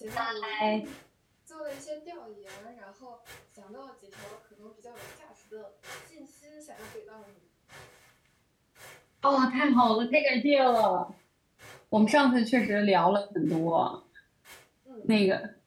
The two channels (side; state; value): both; identical; correlation 1.00